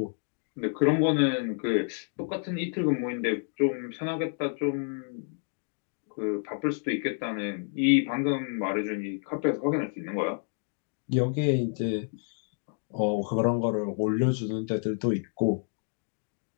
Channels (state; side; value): silent; right; 58 dB below the other